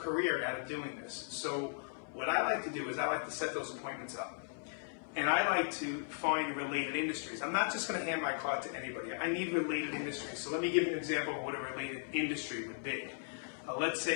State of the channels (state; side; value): silent; right; 53 dB below the other